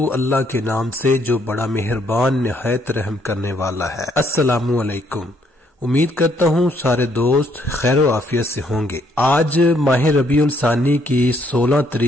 اللہ کے نام سے جو بڑا مہربان نہایت رحم کرنے والا ہے۔ السلام علیکم۔ امید کرتا ہوں سارے دوست خیر و عافیت سے ہوں گے۔ آج ماہ ربیع الثانی کی 16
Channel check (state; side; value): normal; both; correlation 0.69